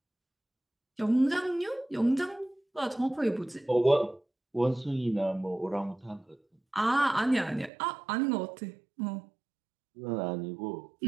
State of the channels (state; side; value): drops out; left; at 7.7 s